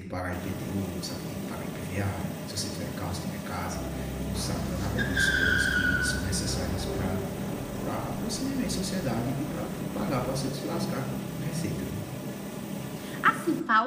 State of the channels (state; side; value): identical; both; correlation 1.00